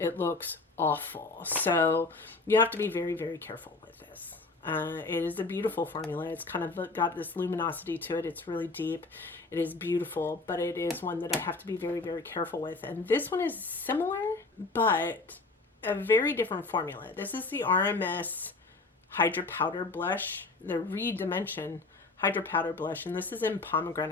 looks awful. So you have to be very, very careful with this. It is a beautiful formula. It's kind of got this luminosity to it. It's really deep. It is beautiful, but it is one that I have to be very, very careful with. And this one is similar, but a very different formula. This is the RMS Hydra Powder Blush, the Redimension Hydra Powder Blush, and this is in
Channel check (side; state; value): right; quieter; 3.6 dB